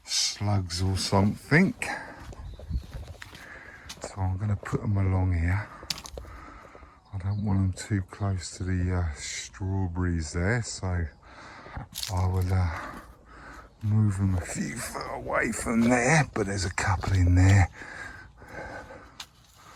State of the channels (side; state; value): both; identical; correlation 1.00